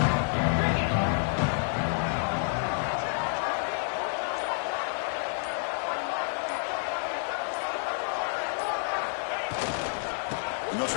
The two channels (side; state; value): right; silent; 58 dB below the other